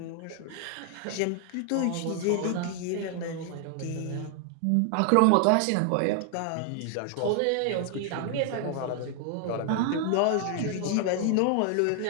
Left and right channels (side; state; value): both; different; correlation 0.00